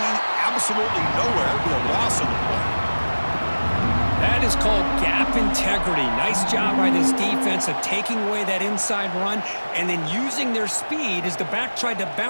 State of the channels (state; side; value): inverted; both; correlation -1.00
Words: absolutely nowhere. Be a loss on the play. That is called gap integrity. Nice job by this defense of taking away that inside run and then using their speed as the back tried to